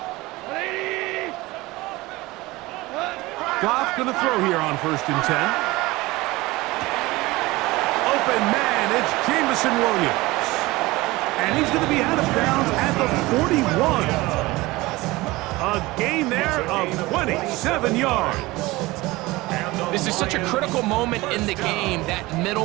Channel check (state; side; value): quieter; left; 20.5 dB